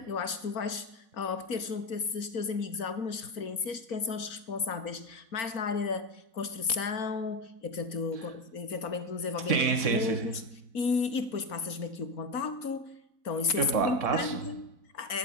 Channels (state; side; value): late; right; 4.4 ms